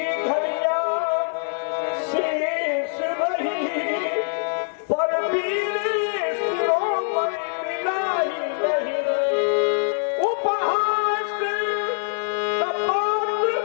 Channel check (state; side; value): silent; right; digital silence